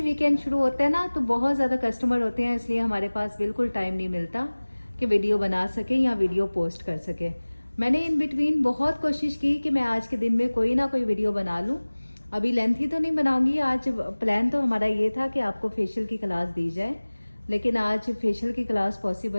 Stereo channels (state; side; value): inverted; both; correlation -1.00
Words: वीकेंड शुरू होता है ना तो बहुत ज़्यादा कस्टमर होते हैं, इसलिए हमारे पास बिल्कुल टाइम नहीं मिलता कि वीडियो बना सके या वीडियो पोस्ट कर सके। मैंने इन बिटवीन बहुत कोशिश की कि मैं आज के दिन में कोई ना कोई वीडियो बना लूँ। अभी लेंथी तो नहीं बनाऊंगी आज। प्लान तो हमारा ये था कि आपको फेशियल की क्लास दी जाए, लेकिन आज फेशियल की क्लास